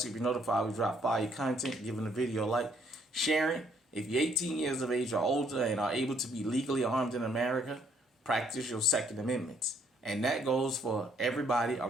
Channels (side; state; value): both; normal; correlation 0.67